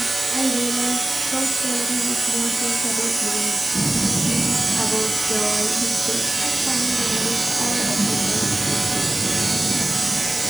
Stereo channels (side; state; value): right; noise; hiss, 7 dB below the sound